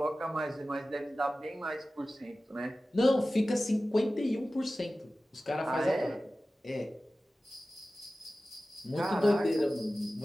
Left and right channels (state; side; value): normal; both; correlation 0.96